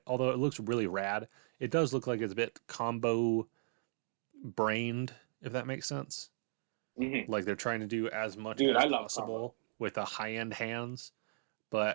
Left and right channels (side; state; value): left; silent; digital silence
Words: although it looks really rad, it does look like it's a bit combo brained, if that makes sense. Mhm. Like they're trying to do as much Dude, as I love possible with the high end hands,